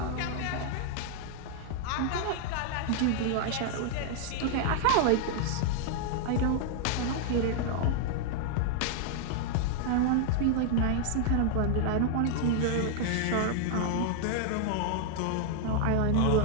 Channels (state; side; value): different; both; correlation -0.01